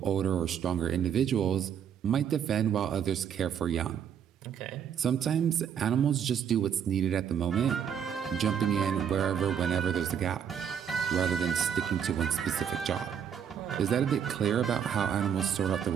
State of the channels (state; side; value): quieter; left; 8.3 dB